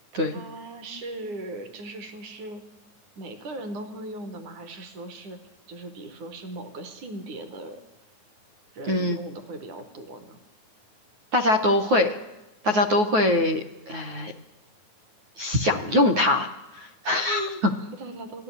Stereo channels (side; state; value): left; late; 9.4 ms